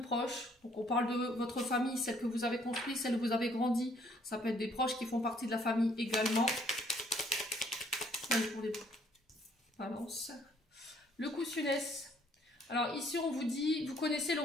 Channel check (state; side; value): normal; both; correlation 0.64